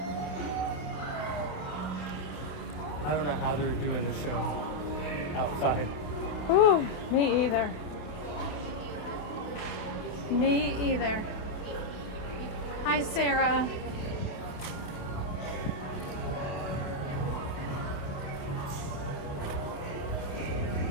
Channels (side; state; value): right; late; 28 ms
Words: I don't know how they're doing the show outside. Ooh, me either. Me either. Hi, Sarah.